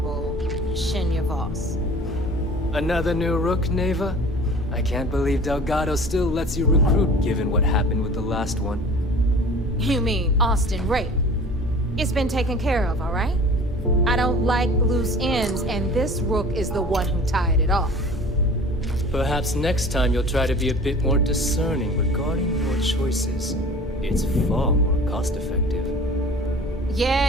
Shinya Voss. Another new Rook, Neva? I can't believe Delgado still lets you recruit, given what happened with the last one. You mean Austin Rape? It's been taken care of, all right? I don't like loose ends, and this Rook is the one who tied it off. Perhaps next time you'll try to be a bit more discerning regarding your choices. It's far more cost-effective.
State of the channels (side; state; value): both; normal; correlation 0.43